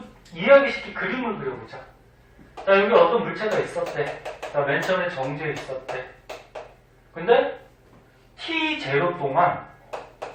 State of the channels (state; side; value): identical; both; correlation 1.00